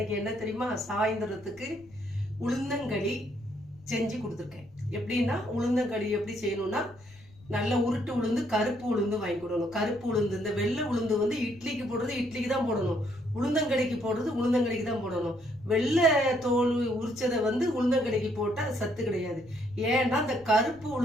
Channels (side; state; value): left; noise; rumble, 25 dB below the sound